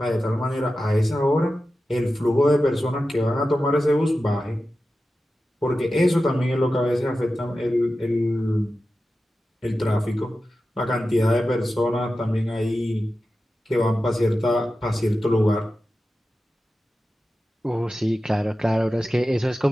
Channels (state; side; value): normal; both; correlation 0.93